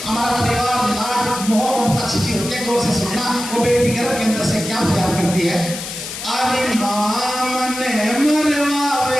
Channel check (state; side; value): noise; left; hiss, 8 dB below the sound